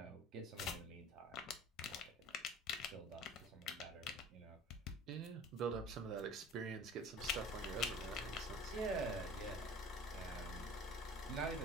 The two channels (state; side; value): normal; both; correlation 0.44